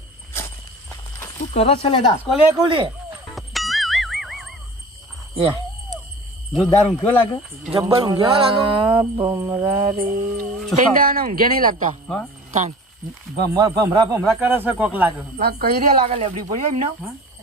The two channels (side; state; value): both; normal; correlation 0.40